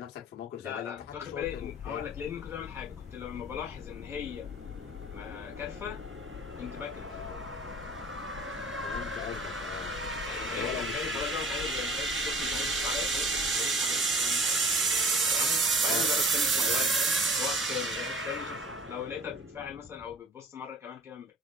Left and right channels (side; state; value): both; normal; correlation 0.43